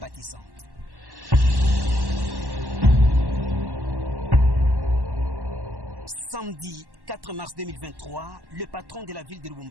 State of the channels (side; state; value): left; late; 1.1 ms